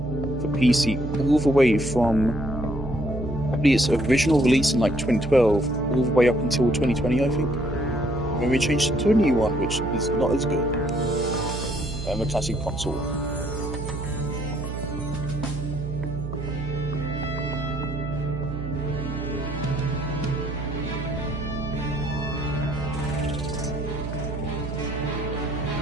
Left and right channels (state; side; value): noise; right; hum, 6 dB below the sound